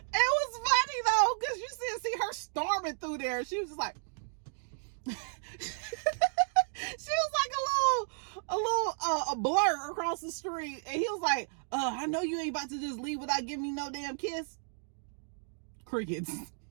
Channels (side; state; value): left; silent; digital silence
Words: funny though, because you see her storming through there. She was just like, she was like a blur across the street, and he was like, I know you ain't about to just leave without giving me no damn kiss. Crickets.